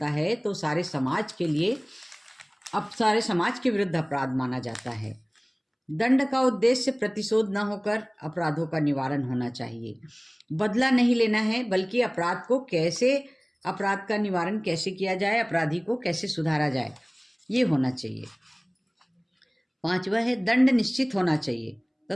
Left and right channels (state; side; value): identical; both; correlation 1.00